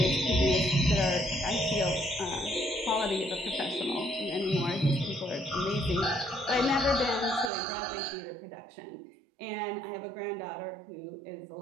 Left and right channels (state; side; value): drops out; left; at 7.5 s